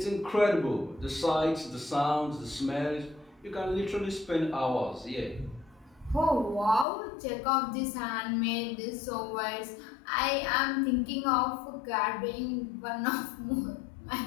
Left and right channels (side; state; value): right; drops out; at 6.9 s